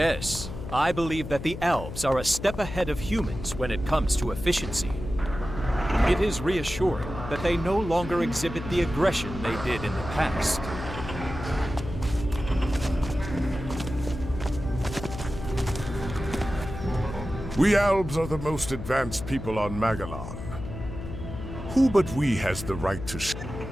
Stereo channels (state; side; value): noise; left; hum, 9 dB below the sound